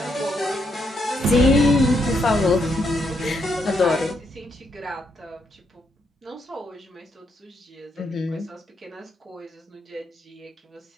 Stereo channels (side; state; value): both; normal; correlation 0.77